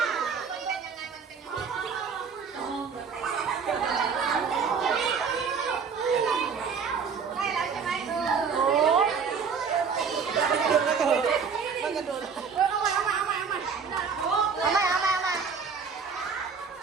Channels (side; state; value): left; quieter; 5.9 dB